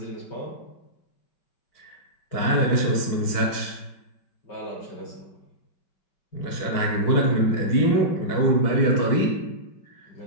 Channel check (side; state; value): right; late; 5.3 ms